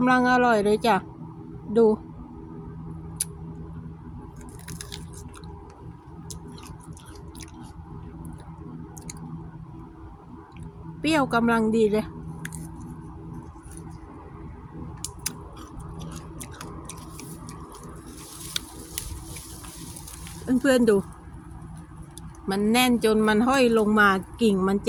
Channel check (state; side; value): identical; both; correlation 1.00